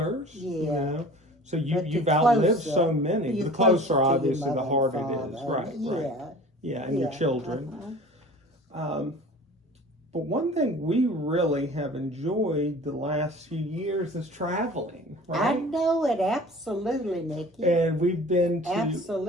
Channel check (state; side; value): normal; both; correlation 0.43